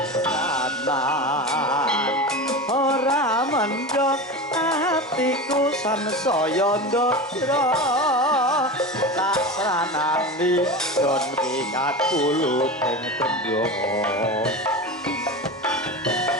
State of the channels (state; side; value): normal; both; correlation 0.26